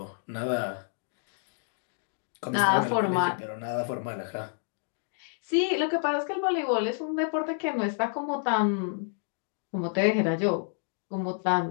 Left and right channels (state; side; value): silent; right; digital silence